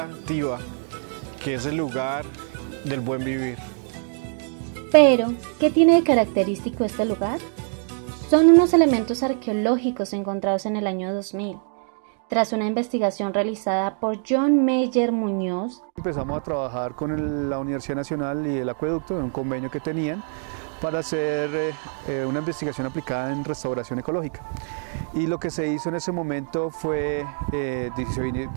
que es el lugar del buen vivir. Pero, ¿qué tiene de característico este lugar? Son unos elementos arqueológicos encontrados en el año 2000. Tras una investigación realizada por John Meyer Muñoz, empezamos a trabajar con la Universidad Nacional y el Acueducto en un convenio que tenían para hacer una investigación aplicada en restauración ecológica. Y lo que se hizo en ese momento fue, se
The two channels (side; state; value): left; silent; 57 dB below the other